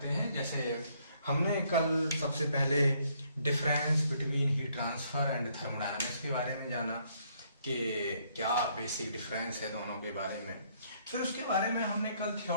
हैं। जैसे हमने कल सबसे पहले difference between heat transfer and thermodynamics के बारे में जाना कि क्या बेसिक डिफरेंस है दोनों के बारे में। फिर उसके बारे में हमने कल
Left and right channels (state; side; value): inverted; both; correlation -0.68